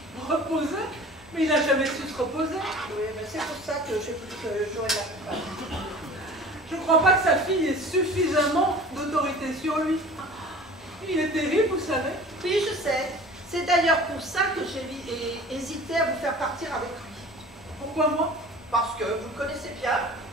Reposer? Mais il n'a jamais su se reposer. Oui, mais c'est pour ça que j'ai voulu que j'aurais la coupable. Je ne crois pas que sa fille ait suffisamment d'autorité sur lui. Il est terrible, vous savez. Oui, je sais. C'est d'ailleurs pour ça que j'ai hésité à vous faire partir avec lui. Pourquoi moi? Parce que vous le connaissez bien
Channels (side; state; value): both; normal; correlation 0.43